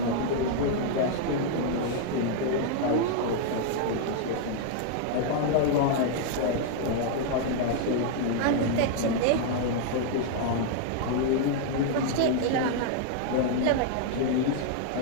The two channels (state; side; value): different; both; correlation -0.01